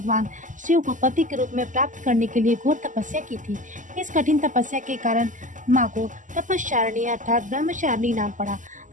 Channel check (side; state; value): left; late; 0.37 ms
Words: शिव को पति के रूप में प्राप्त करने के लिए घोर तपस्या की थी। इस कठिन तपस्या के कारण माँ को तपस्चारिणी अर्थात ब्रह्मचारिणी नाम पड़ा।